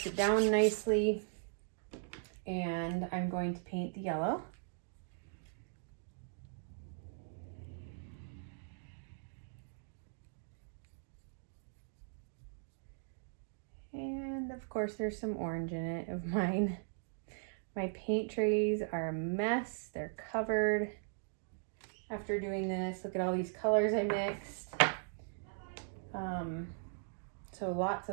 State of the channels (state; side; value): silent; left; digital silence